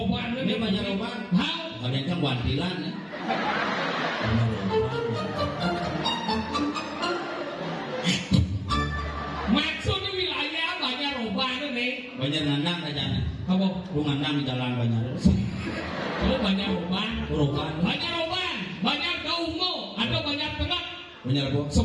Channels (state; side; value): identical; both; correlation 1.00